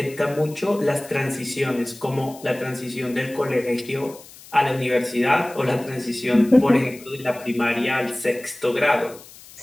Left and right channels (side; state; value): left; noise; hiss, 20 dB below the sound